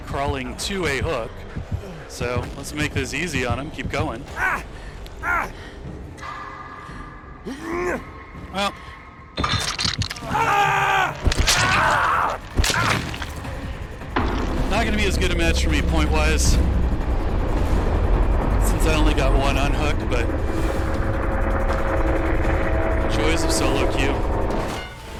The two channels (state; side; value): identical; both; correlation 1.00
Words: to a hook. So let's make this easy on him. Keep going. Well. Not going to be as good a match for me point-wise, since I only got one unhook, but joys of solo queue.